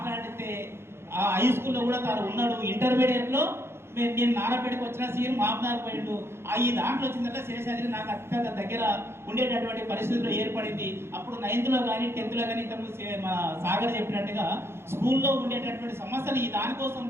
ఆ హై స్కూల్లో కూడా తాను ఉన్నాడు. ఇంటర్మీడియట్లో నేను నారాపేటకు వచ్చిన సీఎం మామనార్ పోయిండు. ఈ దాంట్లో వచ్చిందంటే శేషాద్రి నాకు అత్యంత దగ్గర ఉండేటటువంటి పరిస్థితులు ఏర్పడింది. అప్పుడు 9th లో కానీ 10th లో కానీ ఇంతకుముందు మా సాగర్ చెప్పినట్టుగా స్కూల్లో ఉండేటటువంటి సమస్యలు ఈ దానికోసం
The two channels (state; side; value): late; left; 0.12 ms